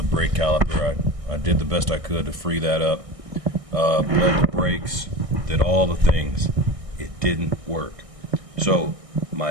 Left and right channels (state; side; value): late; left; 1.6 ms